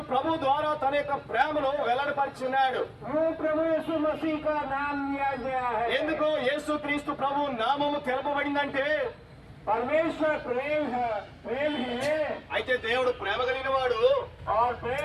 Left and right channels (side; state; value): both; identical; correlation 1.00